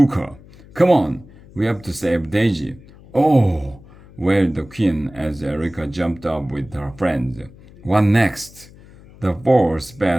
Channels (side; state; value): left; noise; hum, 22 dB below the sound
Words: her. Come on, we have to save Daisy. Oh, wailed the queen as Erica jumped up with her friends. What next? The four